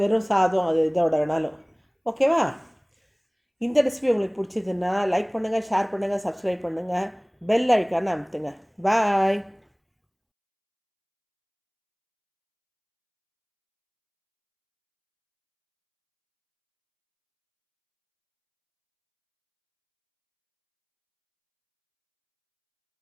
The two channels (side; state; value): both; identical; correlation 1.00